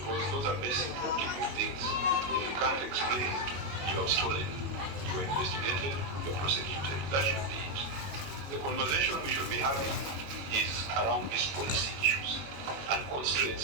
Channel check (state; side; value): late; left; 21 ms